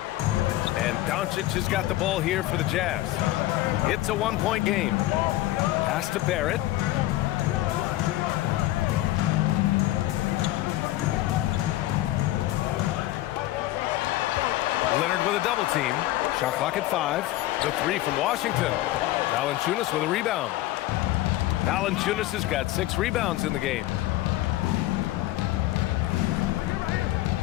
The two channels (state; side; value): quieter; right; 16.0 dB